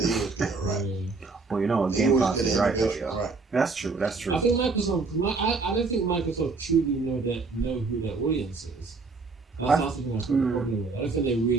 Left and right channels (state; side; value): quieter; left; 4.1 dB